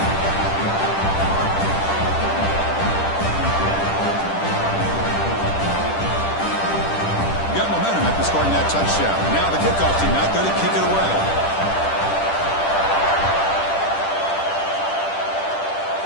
Got momentum after scoring that touchdown. Now the kickoff team out there to kick it away.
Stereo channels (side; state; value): right; late; 10 ms